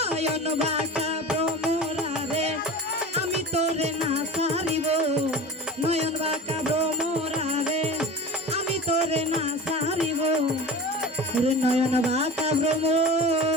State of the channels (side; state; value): both; normal; correlation 0.34